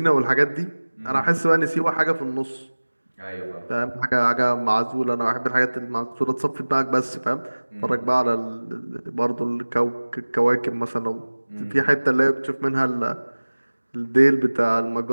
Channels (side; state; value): both; inverted; correlation -1.00